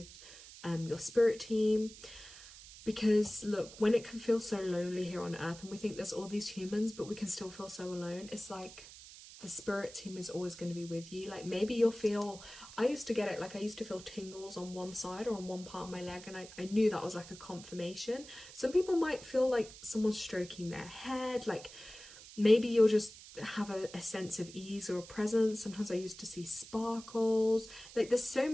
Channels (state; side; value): noise; right; hiss, 17 dB below the sound